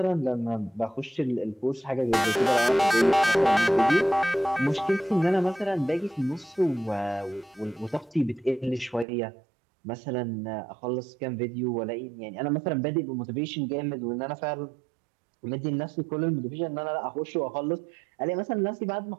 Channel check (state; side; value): drops out; left; at 9.1 s